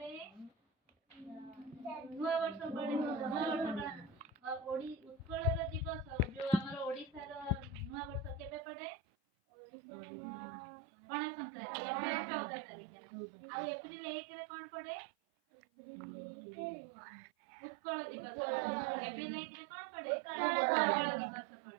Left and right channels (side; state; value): left; drops out; at 8.6 s